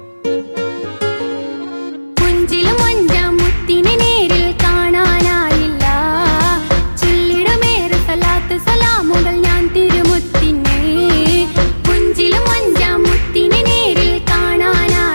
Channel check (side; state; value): both; inverted; correlation -1.00